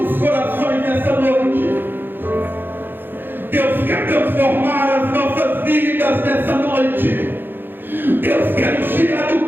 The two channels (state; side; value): late; left; 0.098 ms